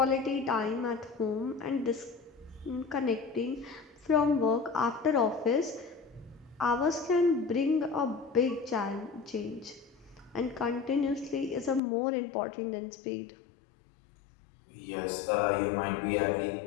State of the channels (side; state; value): right; drops out; at 11.8 s